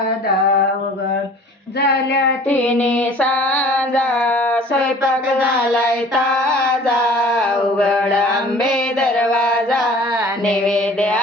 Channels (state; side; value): normal; both; correlation 0.48